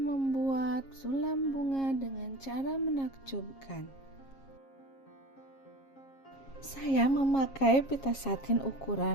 sulam bunga dengan cara menakjubkan. Saya memakai pita satin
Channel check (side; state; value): right; late; 7.4 ms